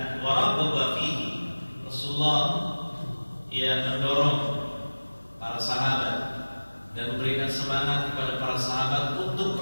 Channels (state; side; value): inverted; both; correlation -1.00